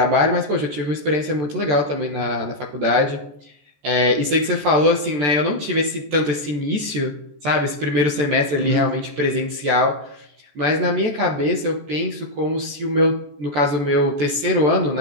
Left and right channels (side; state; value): left; late; 14 ms